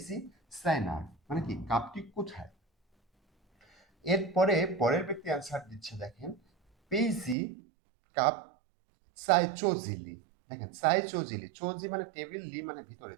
সাইনার মানে কি কাপটি কোথায়। এরপরে পরের ব্যক্তি অ্যান্সার দিচ্ছে দেখেন পেইজি কাপ সাই চোজিলি। দেখেন সাই চোজিলি, চোজি মানে টেবিল, লি মানে ভিতরে,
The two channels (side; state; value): left; drops out; at 7.4 s